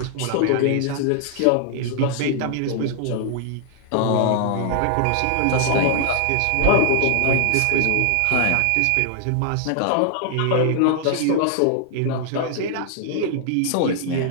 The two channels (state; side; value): different; both; correlation 0.00